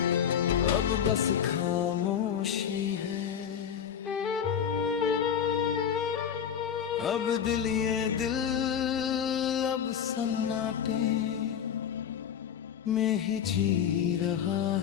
अब बस खामोशी है। अब दिल ये दिल अब सन्नाटे में ही जी रहा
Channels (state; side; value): quieter; right; 8.4 dB